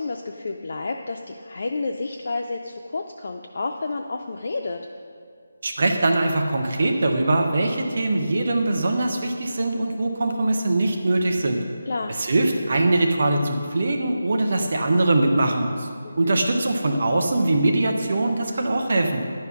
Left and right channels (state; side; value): inverted; both; correlation -0.92